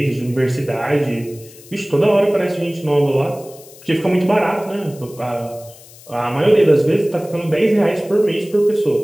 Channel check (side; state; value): left; noise; hiss, 22 dB below the sound